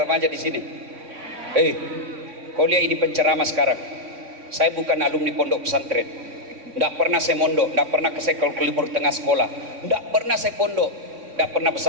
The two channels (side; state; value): left; late; 3.6 ms